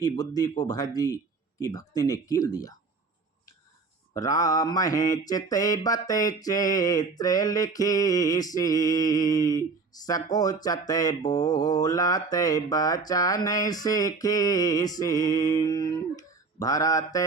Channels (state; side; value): quieter; left; 4.2 dB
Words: बुद्धि को भरत जी की भक्ति ने कील दिया। राम है चिते बते चेत्र लिखी सी, सकोचते बोलते बचन सीखी सी, भरत